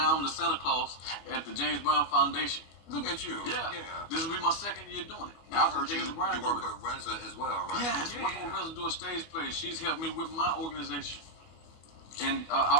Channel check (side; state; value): right; late; 25 ms